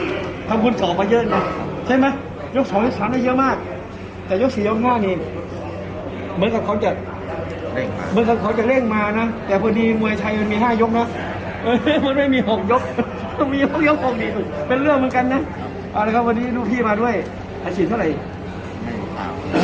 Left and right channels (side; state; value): both; identical; correlation 1.00